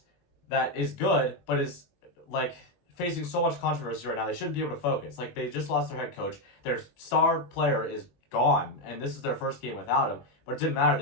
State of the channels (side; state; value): right; late; 22 ms